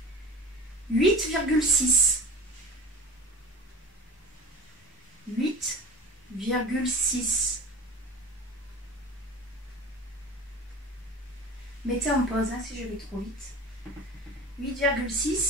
8. 8,6. 8,6. Mettez en pause hein, si je vais trop vite.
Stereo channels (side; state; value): both; normal; correlation 0.35